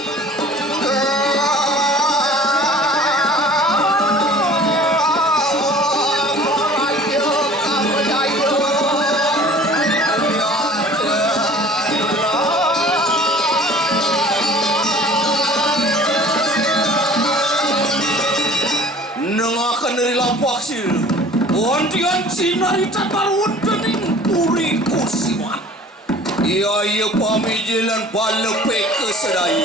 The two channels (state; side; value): normal; both; correlation 0.47